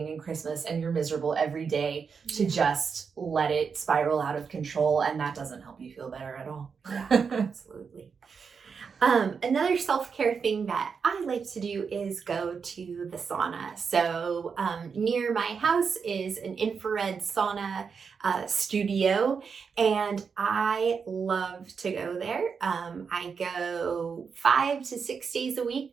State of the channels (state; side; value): quieter; left; 5.9 dB